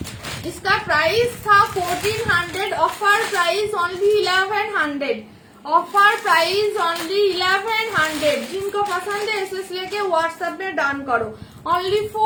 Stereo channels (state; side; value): identical; both; correlation 1.00